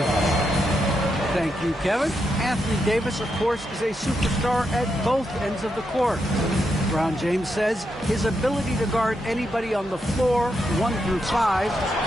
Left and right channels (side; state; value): both; normal; correlation 0.83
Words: Thank you, Kevin. Anthony Davis, of course, is a superstar at both ends of the court. LeBron James says his ability to guard anybody on the floor, 1 through 5,